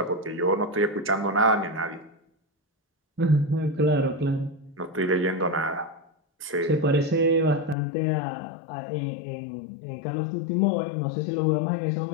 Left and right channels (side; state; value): right; drops out; at 7.8 s